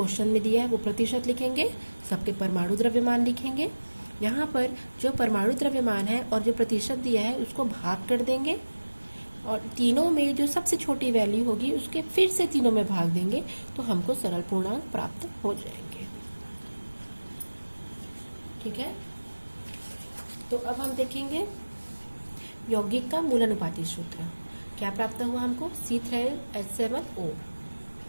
में दिया है वो प्रतिशत लिखेंगे, सबके परमाणु द्रव्यमान लिखेंगे। यहाँ पर जो परमाणु द्रव्यमान है और जो प्रतिशत दिया है उसको भाग कर देंगे, और तीनों में जो सबसे छोटी वैल्यू होगी उसके फिर से तीनों में भाग देंगे, तो हमको सरल पूर्णांक प्राप्त हो जाएंगे। ठीक है, तो अब हम देखेंगे यौगिक का मूलानुपाती सूत्र। क्या प्राप्त हुआ हमको, C3H7O।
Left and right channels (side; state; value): both; inverted; correlation -1.00